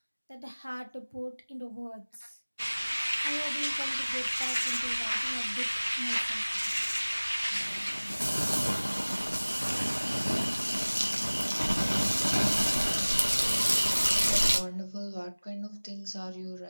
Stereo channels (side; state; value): both; inverted; correlation -1.00